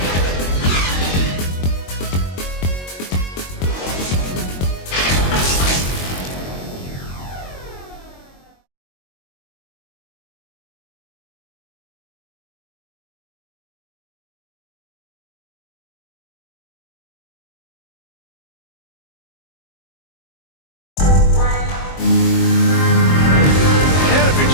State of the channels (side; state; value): right; late; 22 ms